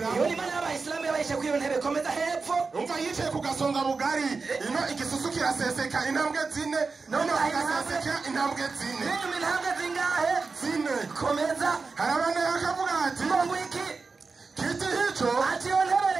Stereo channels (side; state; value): left; quieter; 4.4 dB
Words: yo Imana y'Abayisilamu yabayishe ku iyo ntebe komeza hepfo umva yicaye ku gasonga bugari ino igisusu kiraseseka intambwe 4 none agaseseka intambwe 4 n'inyu intambwe zingahe 4 komeza harabana yakavuga ati ngo wiki kiti hicho ati yo ntebe